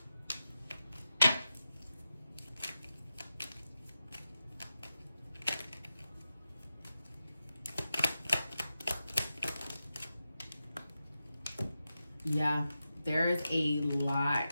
Yeah, there's a lot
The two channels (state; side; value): inverted; both; correlation -0.91